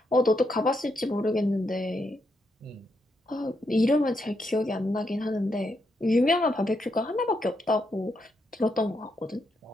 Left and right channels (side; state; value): both; normal; correlation 0.80